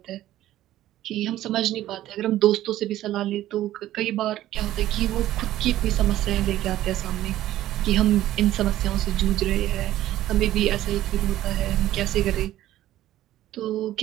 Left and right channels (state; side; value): quieter; left; 13.9 dB